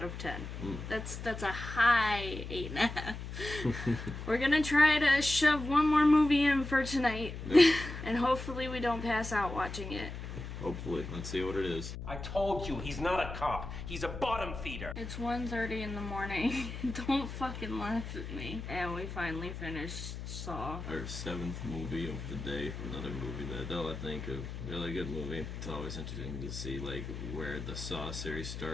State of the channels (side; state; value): left; noise; hum, 8 dB below the sound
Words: of 10. That's a high 8.5. We're gonna try to shove one more movie in for tonight. Yep. And hopefully we don't pass out watching it. Hopefully. Let's see what it is. I told you, he's not a cop. He's a bottom feeder. It's 1:30 in the morning. Don't fucking laugh at me. And we finally finished Saw. Our 7th movie of the day. Another movie that I think a really good movie. It's always interesting to see, like, where the Saw series